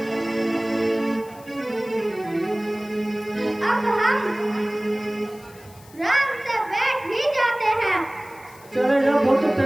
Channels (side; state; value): left; noise; hiss, 24 dB below the sound